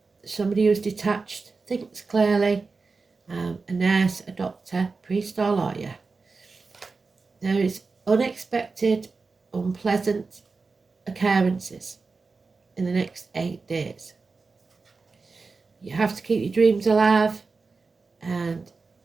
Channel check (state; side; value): quieter; left; 4.2 dB